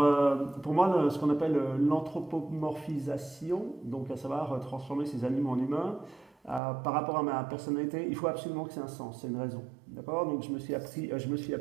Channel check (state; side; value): drops out; left; at 6.6 s